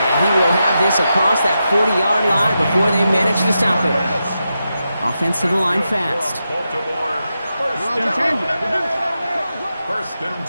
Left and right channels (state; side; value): inverted; both; correlation -0.88